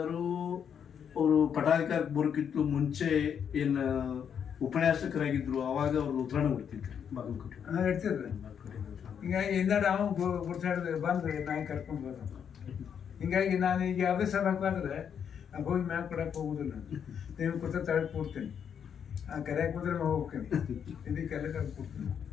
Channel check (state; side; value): quieter; right; 7.9 dB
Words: ಅವರು ಪಟಾಧಿಕಾರಕ್ಕೆ ಬರೋಕ್ಕಿಂತ ಮುಂಚೆ ಏನು ಉಪನ್ಯಾಸಕರಾಗಿದ್ರು, ಅವಾಗ ಅವ್ರು ಉತ್ತರಾಣ ಕೊಡ್ತಿದ್ರು ಬಾಗಲಕೋಟೆ. ಇಡ್ತಿದ್ರು. ಹಿಂಗಾಗಿ ಹಿಂದಾಡಿ ಅವ ಗುರ್ತಾಡಿದ್ರೆ ಬಂದು ನಾಯಿ ಕರ್ಕೊಂಡು ಬರೋದು. ಹಿಂಗಾಗಿ ನಾನು ಈಗ ಯಾವುದೇ ಸಭಾಕಾದ್ರೆ ಹೋಗಿ ಮ್ಯಾಗ ಕೊಡಕ್ಕೆ ಹೋಗುದಿಲ್ಲ. ನೀವು ಕೂತ ತಳಕ್ಕೆ ಕೊಡ್ತೀನಿ, ಕರೆಯಾಕೆ ಕೂತ್ರೆ ಹೋಗ್ತೀನಿ, ಇದಕ್ಕೆಲ್ಲ ಕರೆದು ಕೊಡ್ತೀನಿ.